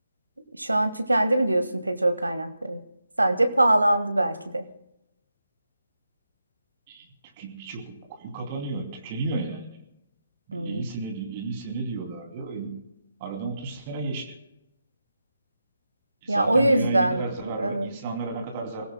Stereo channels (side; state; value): both; inverted; correlation -0.88